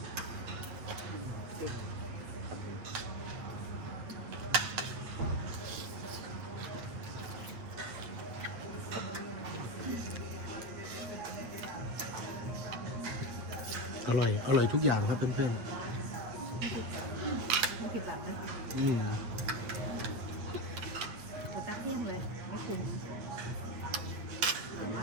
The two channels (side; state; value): left; late; 8.5 ms